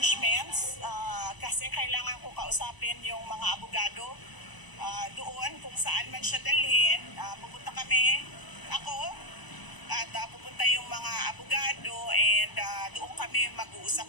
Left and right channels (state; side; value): late; right; 1.0 ms